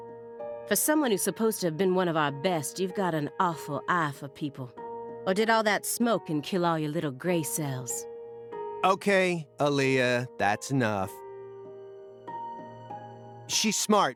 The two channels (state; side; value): identical; both; correlation 1.00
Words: For someone who's supposed to have been one of our best, you've got an awful eye for people. Or did all that smoke and kill all your little gray cells? Okay, Aaliyah, that's enough. She's